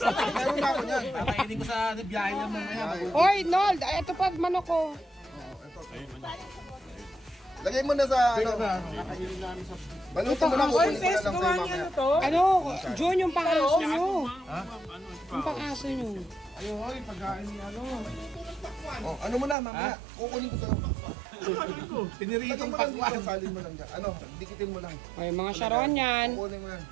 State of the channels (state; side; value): drops out; left; at 19.6 s